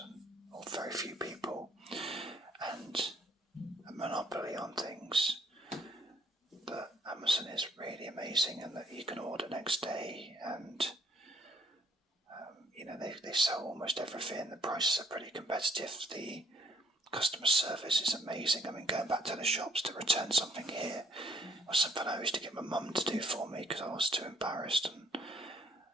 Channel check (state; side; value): normal; both; correlation 0.65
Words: or very few people, and a monopoly on things. But Amazon is really amazing, and that you can order next day, and they sell almost everything. The prices are pretty competitive. The customer service is amazing. I mean, going back to the shops to return something here was something I used to get my mum to do for me because I was too embarrassed and